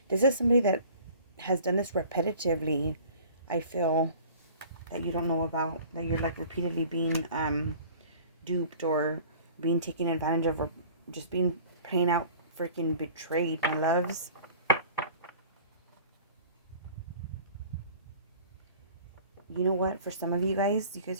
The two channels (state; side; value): inverted; both; correlation -0.46